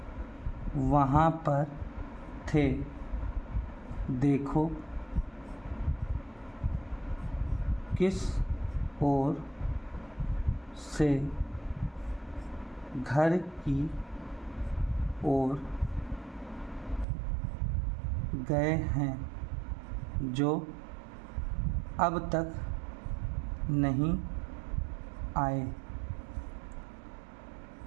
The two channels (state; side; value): drops out; left; at 17.1 s